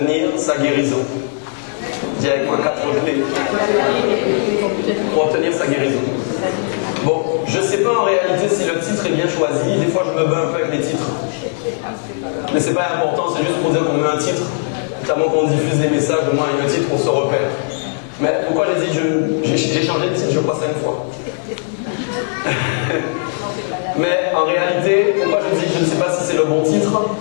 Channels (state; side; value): silent; right; 68 dB below the other